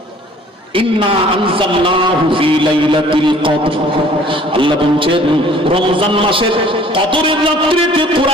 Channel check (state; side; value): normal; both; correlation 0.53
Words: ইন্না আনজালনাহু ফি লাইলাতিল কদর। আল্লাহ বলেন রমজান মাসের কদরের রাত্রিতে